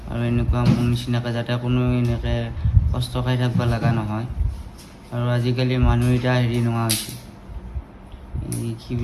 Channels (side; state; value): both; identical; correlation 1.00